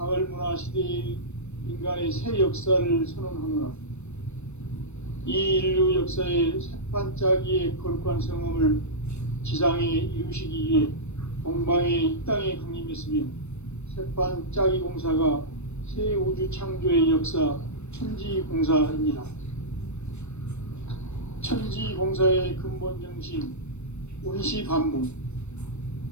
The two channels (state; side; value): late; right; 0.81 ms